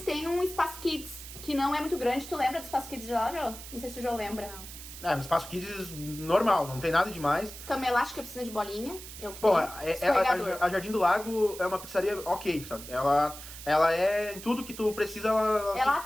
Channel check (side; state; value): right; noise; hiss, 13 dB below the sound